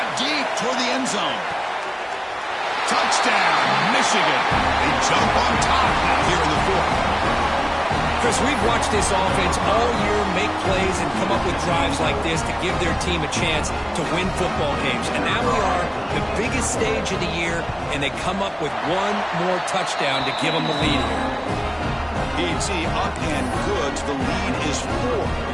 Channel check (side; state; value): both; identical; correlation 1.00